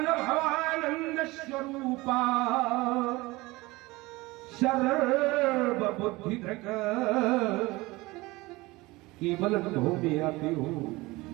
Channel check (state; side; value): quieter; left; 21.4 dB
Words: स्वरूपा सर्वबुद्धि धृक। केवल अनुभव में आती हूं।